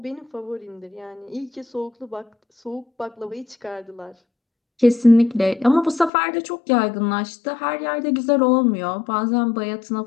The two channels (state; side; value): drops out; right; at 6.1 s